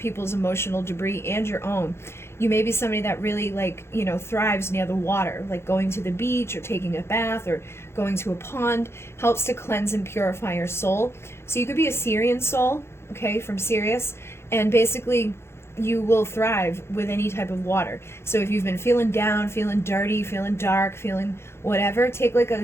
emotional debris and your own. You may be somebody that really, like, you know, thrives near the water, like going to the beach or taking a bath or going to a pond helps to cleanse and purify your soul. So you could be a Syrian soul, okay, from Sirius, and basically you will thrive with any type of water. So if you've been feeling down, feeling dirty, feeling dark, feeling whatever, take like a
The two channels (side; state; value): right; late; 0.12 ms